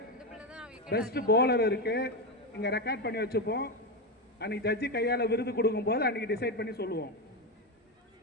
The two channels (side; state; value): both; normal; correlation 0.12